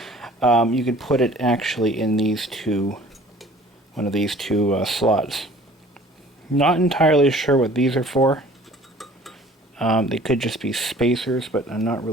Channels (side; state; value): both; normal; correlation 0.50